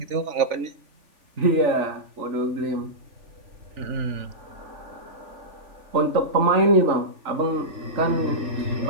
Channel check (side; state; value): left; late; 3.4 ms